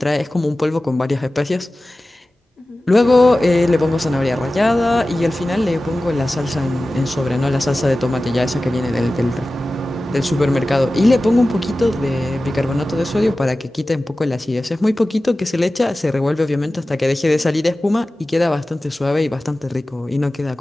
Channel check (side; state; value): both; normal; correlation 0.96